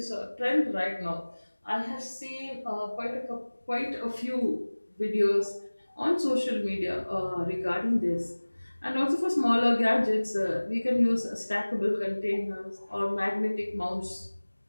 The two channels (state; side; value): inverted; both; correlation -1.00